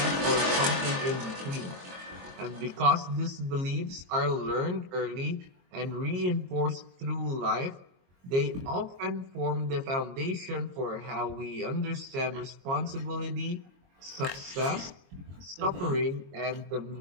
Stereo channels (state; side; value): late; left; 22 ms